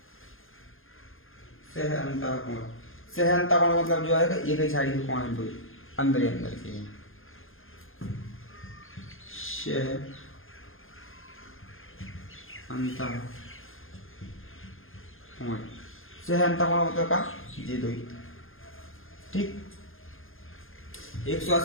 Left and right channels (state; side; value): late; right; 0.60 ms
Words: सह अंतःकोण। सह अंतःकोण मतलब जो है एक ही साइड के कोण है, दो अंदर ही अंदर के, सह अंतःकोण। सह अंतःकोण मतलब का ये दो ही, ठीक।